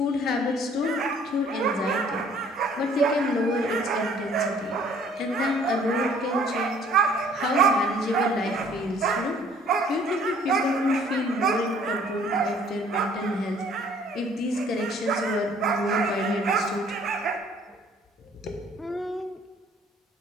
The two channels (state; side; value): normal; both; correlation 0.57